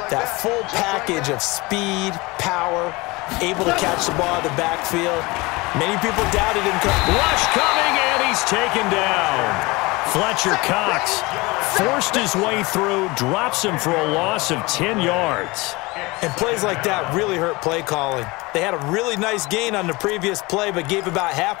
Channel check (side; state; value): right; quieter; 23.5 dB